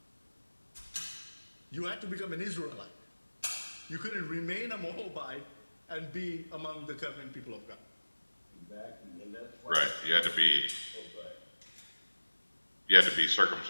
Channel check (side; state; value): both; inverted; correlation -1.00